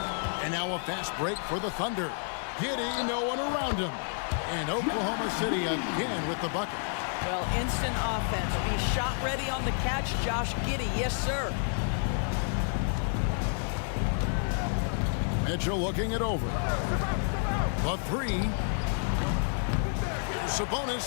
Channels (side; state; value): right; silent; 58 dB below the other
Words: And now a fast break for the Thunder. Giddey, no one around him. And Oklahoma City again with the bucket. Well, instant offense. Be shot ready on the catch, Josh Giddey. Yes, sir. Mitchell looking it over. The three.